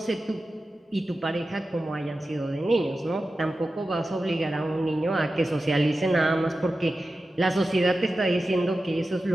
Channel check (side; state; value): both; normal; correlation 0.93